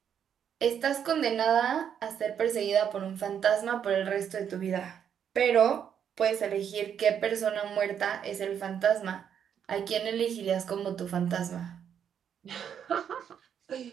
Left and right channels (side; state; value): left; quieter; 8.4 dB